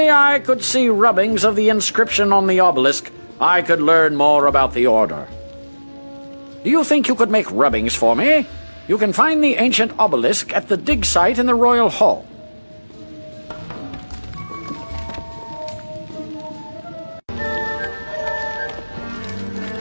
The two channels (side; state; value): both; inverted; correlation -1.00